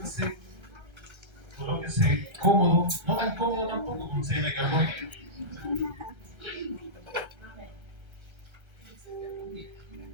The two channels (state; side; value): late; left; 1.3 ms